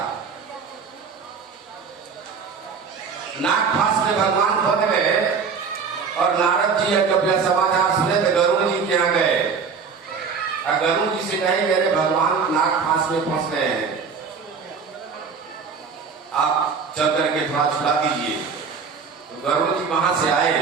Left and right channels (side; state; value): left; quieter; 5.8 dB